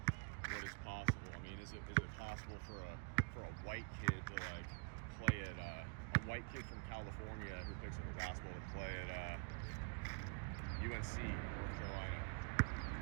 what is possible. I mean, is it possible for a white kid to like play at a white kid from California who picks up a basketball to play at UNC, North Carolina?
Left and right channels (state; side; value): quieter; left; 37.9 dB